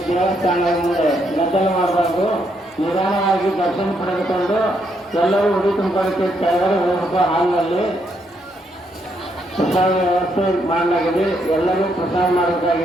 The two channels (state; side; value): normal; both; correlation 0.76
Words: ದೇವಸ್ಥಾನದ ಮುಂದೆ ಗದ್ದಲ ಮಾಡಬಾರ್ದು, ನಿಧಾನವಾಗಿ ದರ್ಶನ ಪಡೆದುಕೊಂಡು ಎಲ್ಲರೂ ಉಡಿ ತುಂಬಿಕೊಳ್ಳಕ್ಕೆ ಕೆಳಗಡೆ ಹೋಗಬೇಕು. ಹಾಲ್ನಲ್ಲಿ ಪ್ರಸಾದ ವ್ಯವಸ್ಥೆ ಮಾಡಲಾಗಿದೆ. ಎಲ್ಲರೂ ಪ್ರಸಾದ